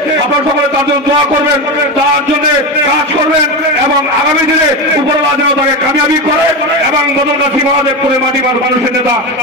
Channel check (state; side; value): normal; both; correlation 0.18